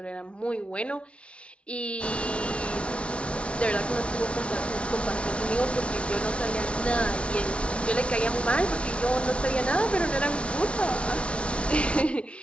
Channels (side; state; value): right; late; 0.060 ms